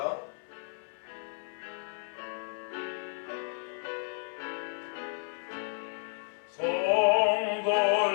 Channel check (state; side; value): silent; right; 56 dB below the other